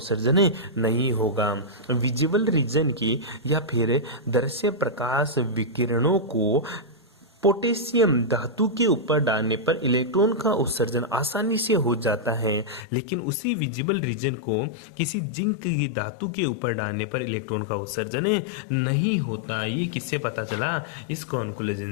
नहीं होगा। विजिबल रीजन की या फिर दृश्य प्रकाश विकिरणों को पोटेशियम धातु के ऊपर डालने पर इलेक्ट्रॉन का उत्सर्जन आसानी से हो जाता है, लेकिन उसी विजिबल रीजन को किसी जिंक की धातु के ऊपर डालने पर इलेक्ट्रॉन का उत्सर्जन नहीं होता। ये किससे पता चला? इस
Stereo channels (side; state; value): right; drops out; at 12.9 s